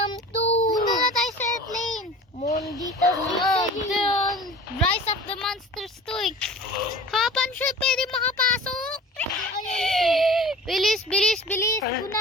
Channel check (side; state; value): both; normal; correlation 0.41